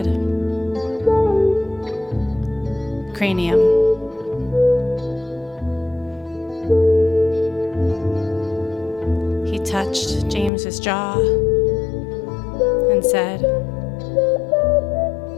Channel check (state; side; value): drops out; right; at 10.5 s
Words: "Cranium." his jaw and said,